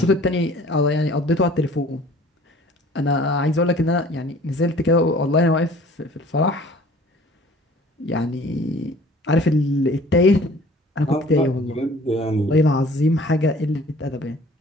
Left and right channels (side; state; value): both; normal; correlation 0.50